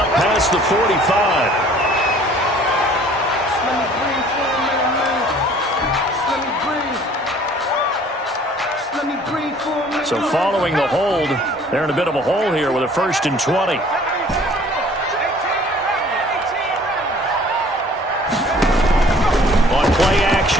past the 45. So following the hold, they're in a bit of a hole here with a 1st and 20. On play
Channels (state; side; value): normal; both; correlation 0.53